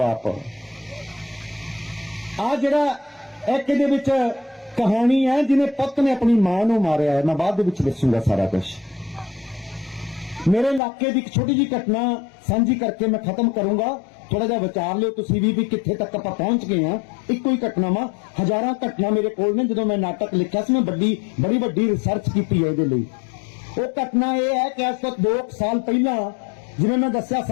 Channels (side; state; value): right; drops out; at 10.8 s